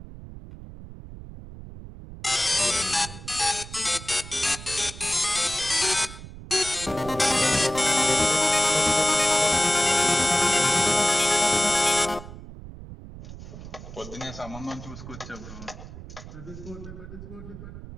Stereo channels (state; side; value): noise; right; rumble, 14 dB below the sound